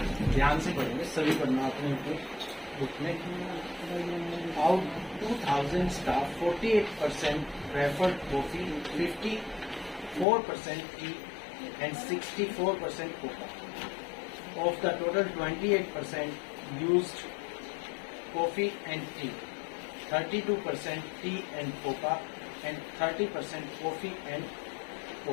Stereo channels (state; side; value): drops out; right; at 10.2 s